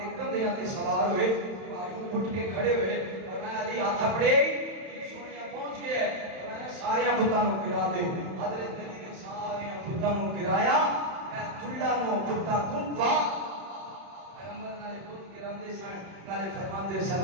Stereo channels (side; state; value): left; late; 31 ms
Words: کندھیاں تے سوار ہوئے. اٹھ کے کھڑے ہوئے اور میں علی ہاتھ پھڑے یہ سونیا پہنچ گیا اور میں سارے بتاں نو گرا دے. حضرت علی نے سارے بتاں نو گرایا. میں چلا نو بتاں تو با پیغمبر نال بت گراندے سن نال فرماندے سن